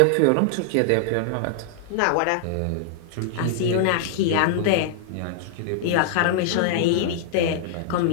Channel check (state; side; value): different; both; correlation -0.01